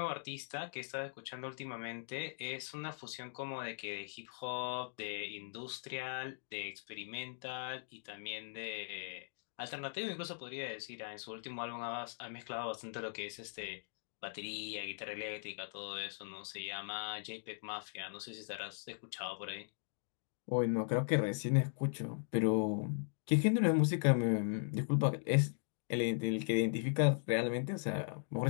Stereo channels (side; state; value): right; silent; digital silence